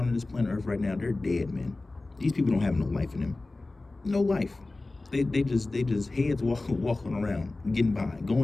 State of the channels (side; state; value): right; quieter; 3.1 dB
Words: on this planet Earth right now, they're dead, man. These people don't have no life in them. No life. They just heads walking around, getting by,